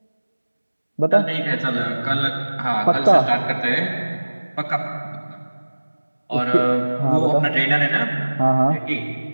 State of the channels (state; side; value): inverted; both; correlation -1.00